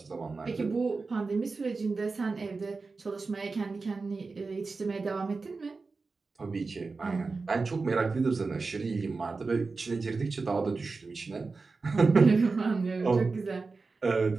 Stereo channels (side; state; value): left; quieter; 4.1 dB